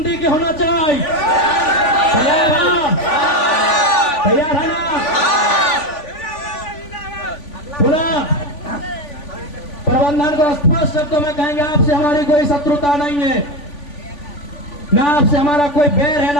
के होना चाहिए। तैयार है? तैयार है ना? पूरा प्रबंधन को स्पष्ट शब्दों में कहेंगे, आपसे हमारी कोई शत्रुता नहीं है, ना आपसे हमारा कोई बैर है,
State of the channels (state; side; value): late; right; 3.5 ms